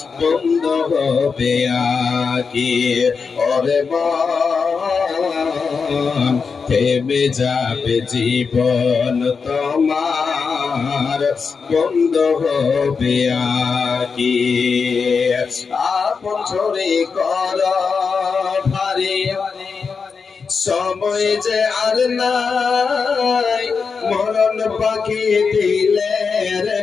বন্ধ হবে আখি ওরে মন থেমে যাবে জীবন তোমার বন্ধ হবে আখি আপন ঝরে কর ভারী সময় যে আর নাই মরণ পাখি দিলের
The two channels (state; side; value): quieter; right; 5.3 dB